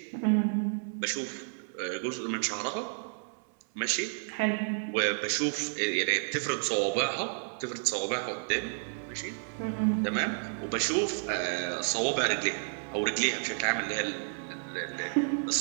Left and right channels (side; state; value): left; silent; 57 dB below the other